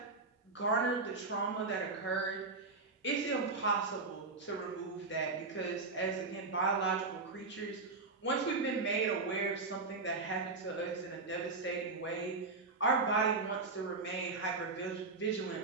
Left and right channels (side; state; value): left; quieter; 3.9 dB